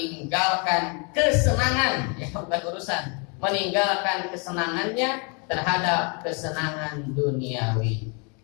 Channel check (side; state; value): right; quieter; 34.2 dB